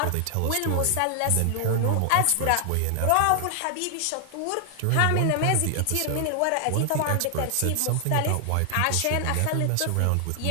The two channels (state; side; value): different; both; correlation 0.00